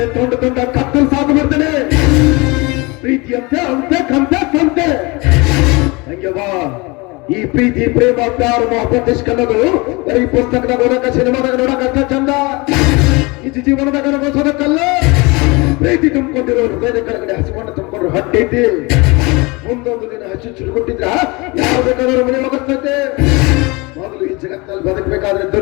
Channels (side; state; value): right; quieter; 25.9 dB